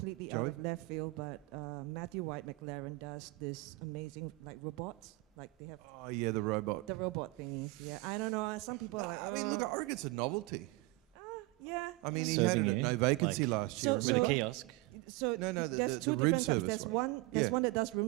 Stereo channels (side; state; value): left; quieter; 22.5 dB